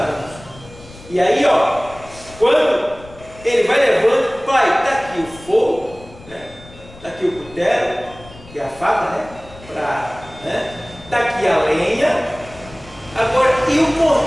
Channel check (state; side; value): noise; left; rumble, 20 dB below the sound